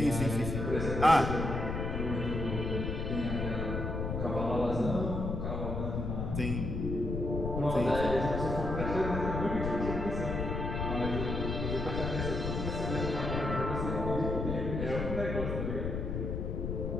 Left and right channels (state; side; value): noise; left; rumble, 2 dB below the sound